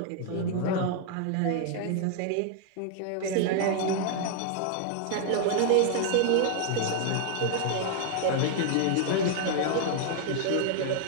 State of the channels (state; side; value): different; both; correlation 0.00